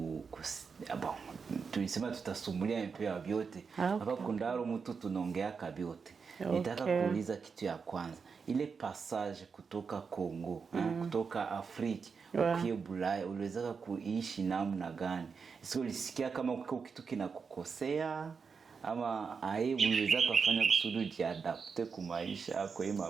tulisema tutasumulia un peu vyote. Hapa kundaro mtu tunaongea kabyote. Nitaka kuuliza kitu ya kwanza. Ile passage kutoka Kongo, kutoka Afrika ukiye Bulaya, uliweza kuishi namna gani? Sio ulisikia kama kitu kinakukosea ama uliweza kufanya kusudi jiadapte kwa maisha kwa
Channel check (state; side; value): quieter; left; 5.5 dB